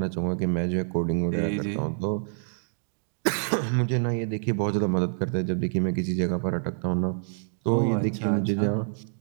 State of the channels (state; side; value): silent; left; digital silence